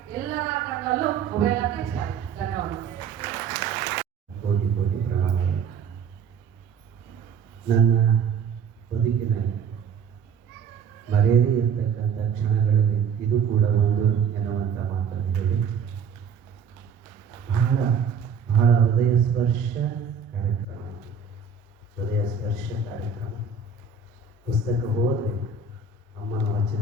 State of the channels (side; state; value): left; quieter; 6.3 dB